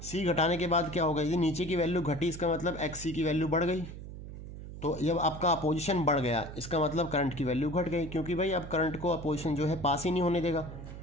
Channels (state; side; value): noise; right; hum, 11 dB below the sound